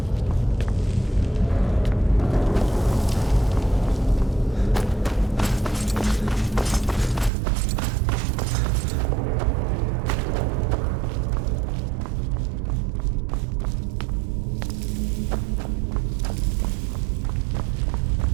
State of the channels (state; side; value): drops out; left; at 7.3 s